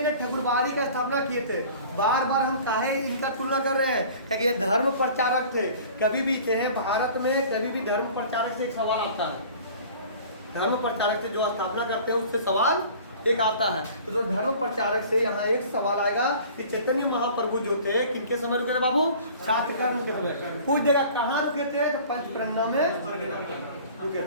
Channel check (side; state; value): both; inverted; correlation -0.46